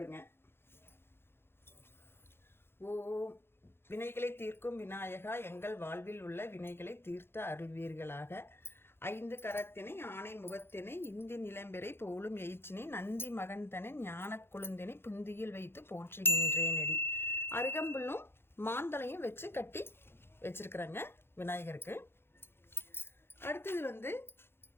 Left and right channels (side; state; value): right; late; 0.11 ms